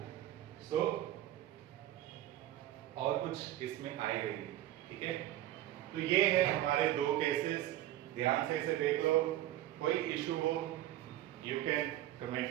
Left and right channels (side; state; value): left; quieter; 13.9 dB